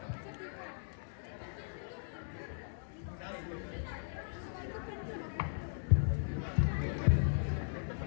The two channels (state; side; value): silent; right; digital silence